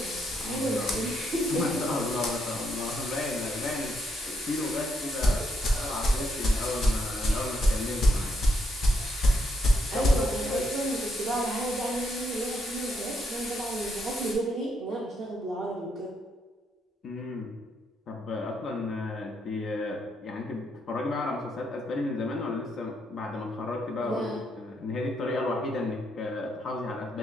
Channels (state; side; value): normal; both; correlation 0.77